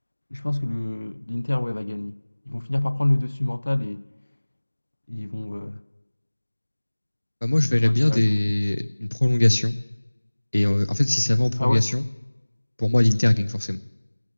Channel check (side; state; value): both; inverted; correlation -1.00